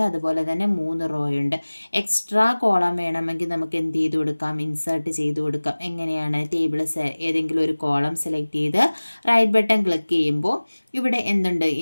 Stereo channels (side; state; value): both; inverted; correlation -1.00